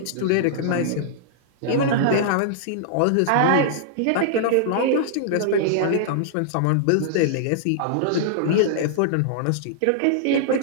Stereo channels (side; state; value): both; different; correlation -0.01